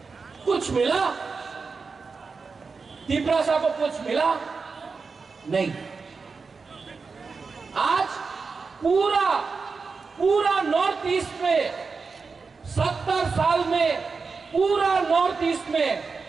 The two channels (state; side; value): quieter; left; 4.7 dB